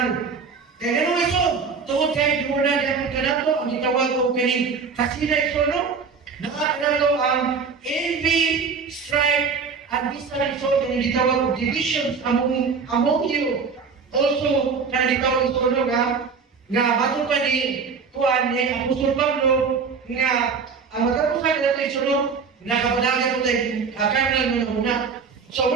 Kaya gano'n ito, tungod kayo muna di ako kanato, ang itawag ko kaning kasina ito, no? Nakakanalo ang envy, strife, at bisan ito, kaya itawag ko divisions among you. Also, kaya itawag ito, no, nga bago pa ni Juan, ni Apostol Pablo, nga ang matapusan na ito, no? Nakapadagan ko tayo, kanal mo na muna. So,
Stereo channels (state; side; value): quieter; left; 5.4 dB